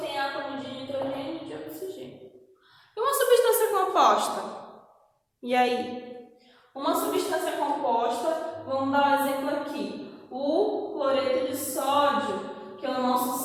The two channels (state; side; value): identical; both; correlation 1.00